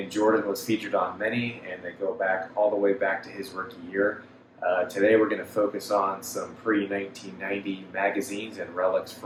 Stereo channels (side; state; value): both; identical; correlation 1.00